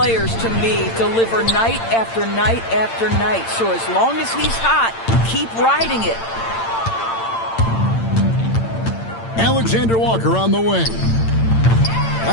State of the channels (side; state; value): right; late; 8.8 ms